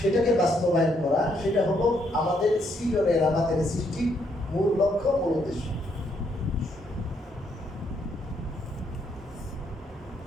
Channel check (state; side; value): normal; both; correlation 0.73